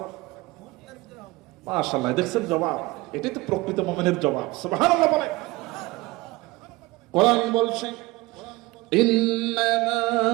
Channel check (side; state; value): left; quieter; 21.4 dB